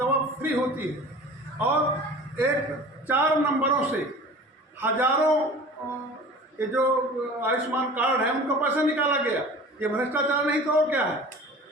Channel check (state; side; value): normal; both; correlation 0.41